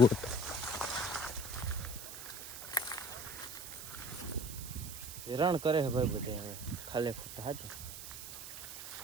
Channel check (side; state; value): right; noise; hiss, 10 dB below the sound